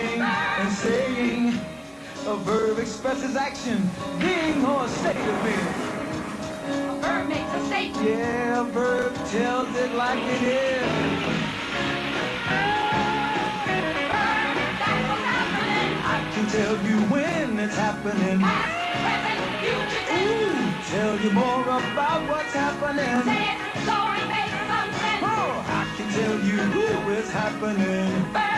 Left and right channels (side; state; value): both; identical; correlation 1.00